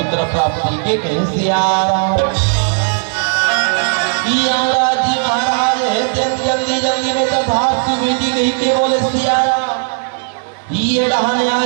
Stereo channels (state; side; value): silent; left; digital silence